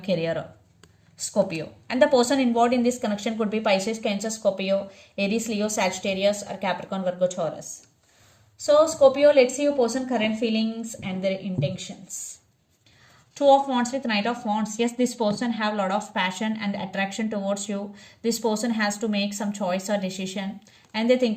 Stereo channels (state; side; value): identical; both; correlation 1.00